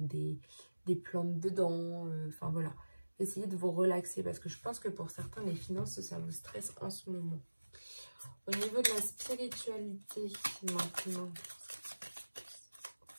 des plantes dedans. Enfin voilà, essayez de vous relaxer parce que je pense que pour certains, les finances, ça vous stresse en ce moment. Au niveau de la spiritualité maintenant.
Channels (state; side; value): inverted; both; correlation -1.00